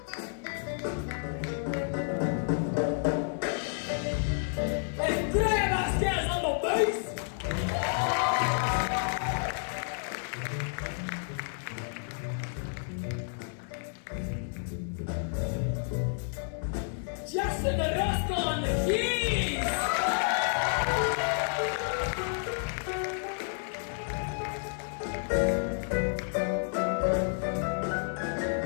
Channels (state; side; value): silent; right; digital silence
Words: And Graham Vasquez on the bass! Justin Orozco on the keys!